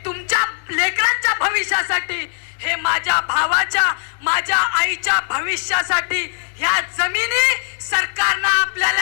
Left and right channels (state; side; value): silent; right; 64 dB below the other